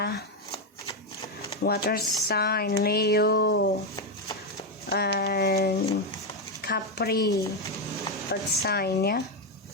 water sign Leo, and Capri, earth sign ya.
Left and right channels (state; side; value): normal; both; correlation 0.07